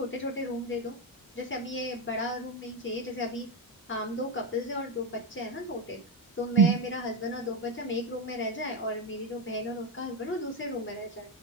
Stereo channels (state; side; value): normal; both; correlation 0.10